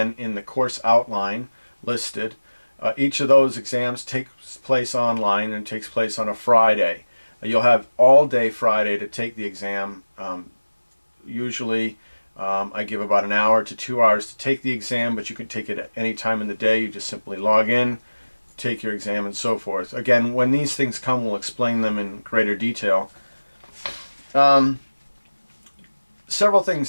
in the course outline listed. Each of those exams takes place online and takes place on a Friday. You'll have all day Friday to take the exam. Usually I give about an hour to 2 hours to take the exam, but you can take it at any time in the day. You just simply log in, take your exam, and so forth. Again, when these things come, we'll explain them in greater detail. Several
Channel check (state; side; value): inverted; both; correlation -1.00